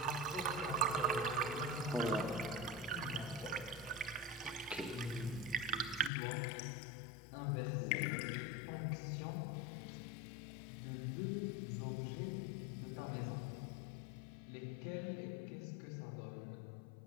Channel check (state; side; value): drops out; right; at 6.1 s